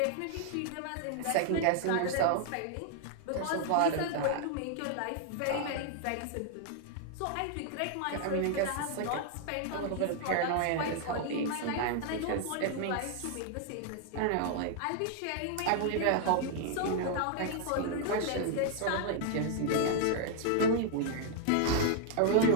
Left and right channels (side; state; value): both; different; correlation 0.00